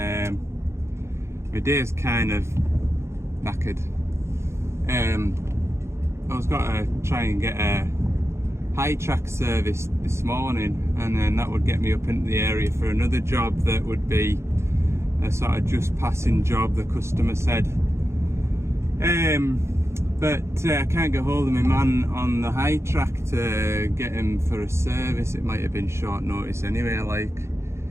day's kind of knackered. I was going to try and get a high track service this morning, and then that would get me up into the area for another job that would be a sort of just passing job, the customer said. But I can't get hold of my man on the high track to get him for a service. It might have been short notice anyway,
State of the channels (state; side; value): late; left; 0.13 ms